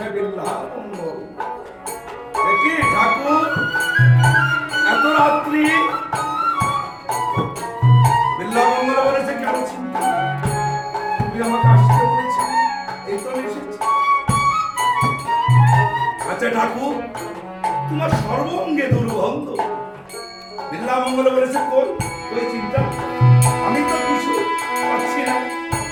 বিল্লামঙ্গল, দেখি ঠাকুর এত রাত্রি। বিল্লামঙ্গল বলেছে, কেন চিন্তা, তুমি আমাকে আসতে বলেছি, এই তো এসেছি। আচ্ছা ঠাকুর, তোমার সর্বঙ্গে দুর্গন্ধ। বিল্লামঙ্গল বলেছে, কই কই চিন্তা, আমি তো কিছু পাচ্ছি না।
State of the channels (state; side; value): identical; both; correlation 1.00